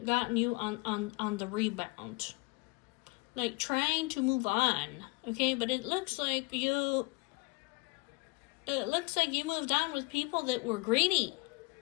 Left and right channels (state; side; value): quieter; right; 27.0 dB